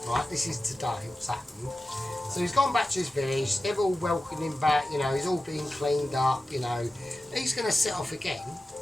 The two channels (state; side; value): normal; both; correlation 0.94